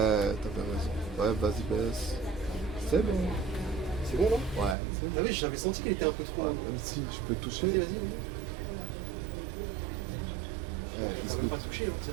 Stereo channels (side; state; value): left; drops out; at 4.8 s